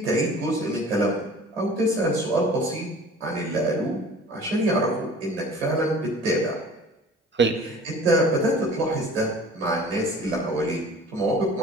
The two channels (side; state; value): both; normal; correlation 0.45